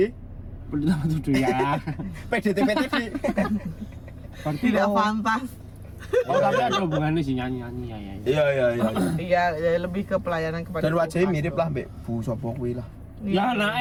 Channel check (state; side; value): identical; both; correlation 1.00